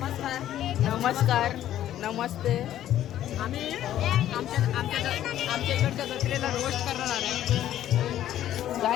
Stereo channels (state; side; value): quieter; right; 12.1 dB